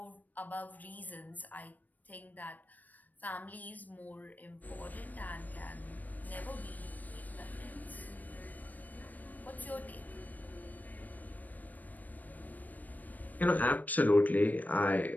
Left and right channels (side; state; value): right; late; 0.083 ms